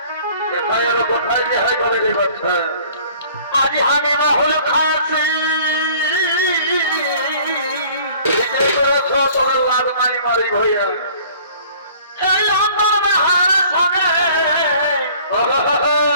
কোথায় গিয়ে হয় বলে রে বাচ্চা আজ আমি রাহুল খাচ্ছি মারি মারি ভইয়া সঙ্গে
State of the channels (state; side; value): inverted; both; correlation -0.52